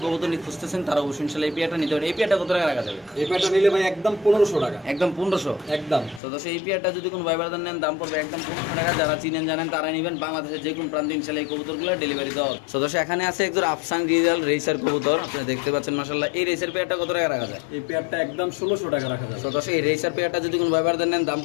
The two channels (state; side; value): drops out; right; at 6.2 s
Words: কবুতর নিয়ে খুঁজতেছেন তারা অবশ্যই ইনশাআল্লাহ এই পেয়ারটা নিতে পারেন। এই পেয়ারটা কত টাকা রাখা যাবে? এই পেয়ারটা নিলে ভাই একদম 1500 টাকা। একদম 1500? একদম। তো দর্শক এই পেয়ারটা যদি কোনো ভাই ব্রাদার নেন দাম পড়বে একদম 1500 টাকা। যারা চিনেন জানেন তারা নেবেন। বাংলাদেশের যে কোনো প্রান্তে ইনশাআল্লাহ এই কবুতরগুলো ডেলিভারি দেওয়া হবে। তো দর্শক এখানে আছে একজন আফসান রিজাল রেসার কবুতর, আপনারা দেখতে পাচ্ছেন মাশাআল্লাহ। এই রেসার পেয়ারটা কত টাকা রাখা যায়? এই পেয়ারটা একদম 1600 টাকা রাখা যায়। তো দর্শক এই রেসার পেয়ারটা যদি কোনো ভাই ব্রাদার নেন দাম